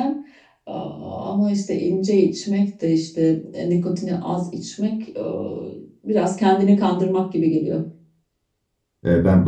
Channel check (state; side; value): identical; both; correlation 1.00